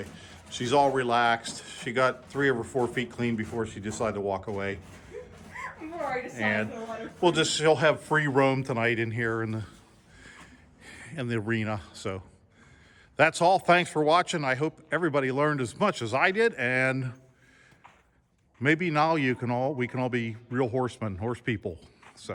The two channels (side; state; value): both; identical; correlation 1.00